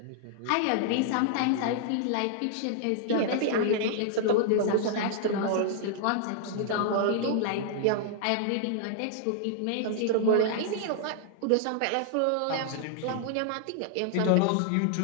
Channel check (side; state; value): both; different; correlation -0.01